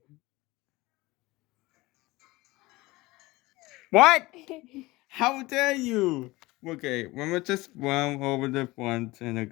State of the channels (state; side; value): quieter; right; 20.7 dB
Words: What? How dare you? Okay, let me just run over the front and